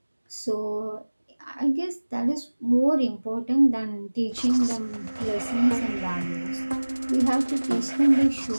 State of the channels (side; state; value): both; inverted; correlation -1.00